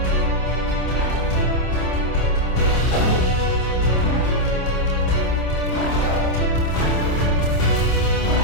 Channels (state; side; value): late; right; 27 ms